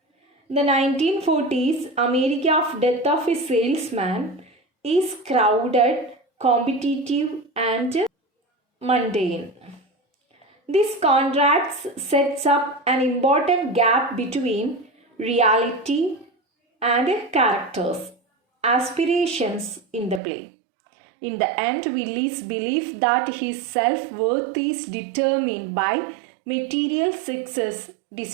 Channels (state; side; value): drops out; left; at 20.2 s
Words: the 1940s America of Death of a Salesman is crowded, competitive, and mundane. This contrast sets up an important gap between reality and characters' aspirations in the play. In the end, Willie's belief that his self-worth is determined by material success